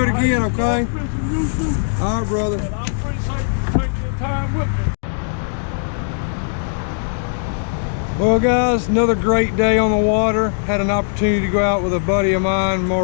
it again, okay? All right, brother. And I appreciate you taking your time with me. Well, guys, another great day on the water. Had an opportunity to go out with a buddy of mine,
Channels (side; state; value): right; silent; digital silence